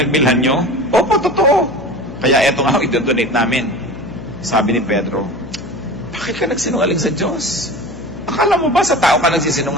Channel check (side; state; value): left; noise; hum, 14 dB below the sound